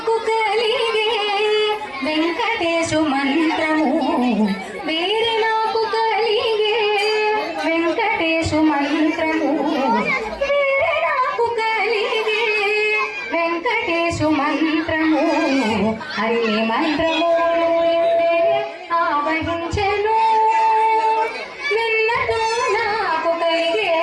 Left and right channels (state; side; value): identical; both; correlation 1.00